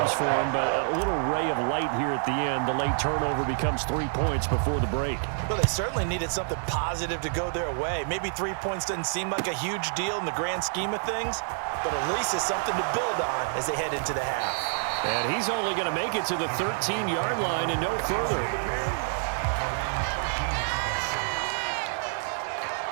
for him, but a little ray of light here at the end. The late turnover becomes 3 points before the break. Well, they certainly needed something positive to go their way. Maybe 3 points doesn't seem like a huge deal in the grand scheme of things, but at least it's something to build on as they head into the half. And he's only going to make it to the 13-yard line and no further.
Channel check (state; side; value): silent; left; digital silence